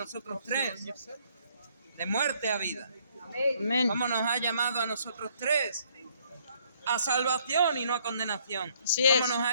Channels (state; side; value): inverted; both; correlation -0.66